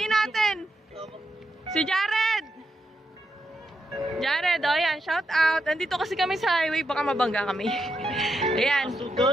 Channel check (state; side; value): normal; both; correlation 0.83